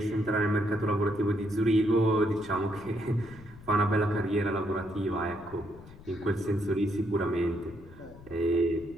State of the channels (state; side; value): noise; left; rumble, 20 dB below the sound